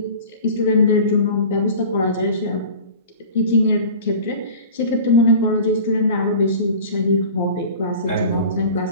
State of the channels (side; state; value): both; inverted; correlation -0.39